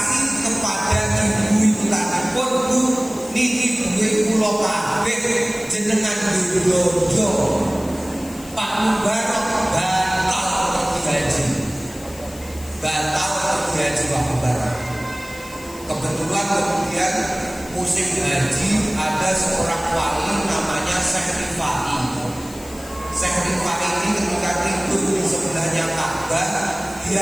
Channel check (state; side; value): noise; left; hiss, 18 dB below the sound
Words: kepada ibu itu tadi pun, Bu, niki duwe kula kabeh jenengan dodo. Pak Mubarok batal pergi haji. Batal pergi haji Pak Mubarok. Kebetulan kemudian musim haji ada seorang wali namanya Syekh Rifai. Syekh Rifai ini ketika tidur di sebelahnya Ka'bah,